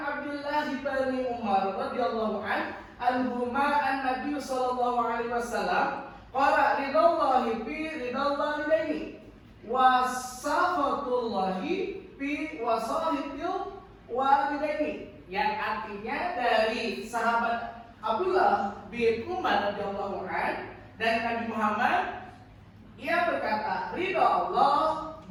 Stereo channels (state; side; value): identical; both; correlation 1.00